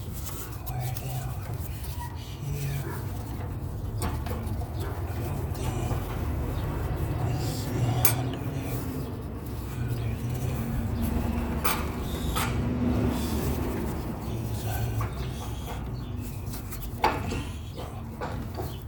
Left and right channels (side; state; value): both; identical; correlation 1.00